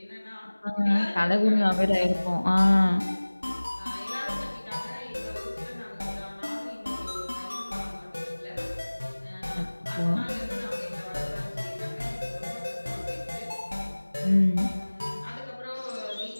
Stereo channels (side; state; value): both; inverted; correlation -1.00